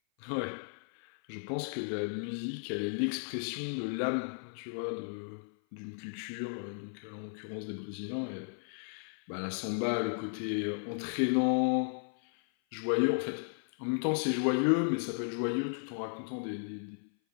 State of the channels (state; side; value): silent; right; 55 dB below the other